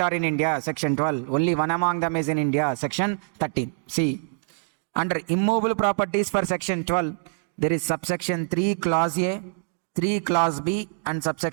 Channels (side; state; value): left; silent; digital silence